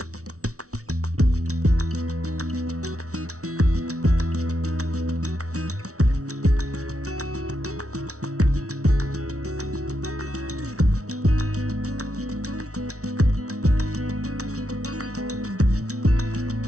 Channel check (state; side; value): late; left; 0.65 ms